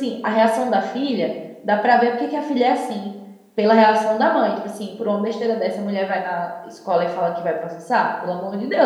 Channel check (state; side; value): identical; both; correlation 1.00